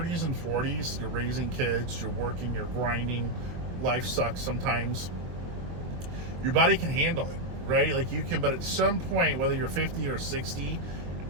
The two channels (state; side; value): late; left; 23 ms